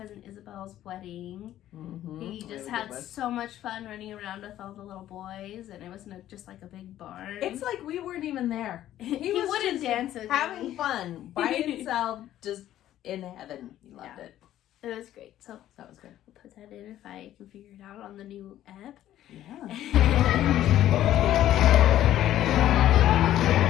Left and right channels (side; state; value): right; quieter; 12.7 dB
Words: Isabel's wedding. He just had so much fun running around with all the little boys, and it wasn't just like a big barn. It's like we weren't even there. He was wouldn't just dance with having me. fun by himself, just in heaven. He loved it. It was great. So That was good. I'll put that in if I can figure it out on the new app. Yeah.